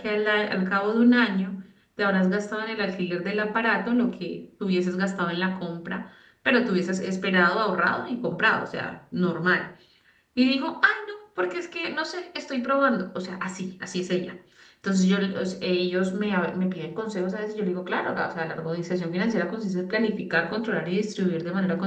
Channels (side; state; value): both; identical; correlation 1.00